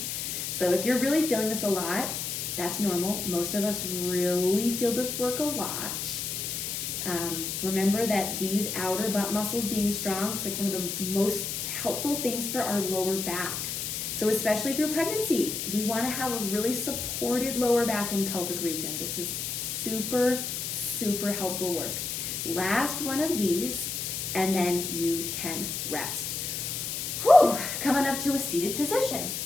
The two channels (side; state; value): left; noise; hiss, 3 dB below the sound